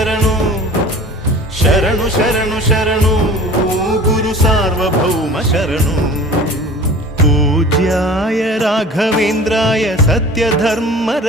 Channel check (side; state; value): both; normal; correlation 0.42